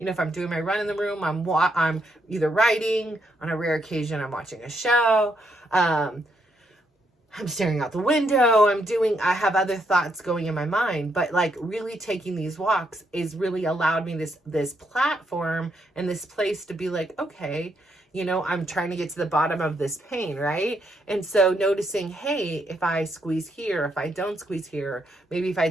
know, if I'm doing my run in the room, I'm either writing, on a rare occasion I'm watching a show, I'm staring out the window, I have other thoughts going in my mind. But like, really taking these walks is really allowed me this platform and this place to be like, okay, you know, I'm trying to get to the bottom of this pain, right? And so noticing, hey, if I squeeze here, if I don't squeeze here, maybe if I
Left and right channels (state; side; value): normal; both; correlation 0.76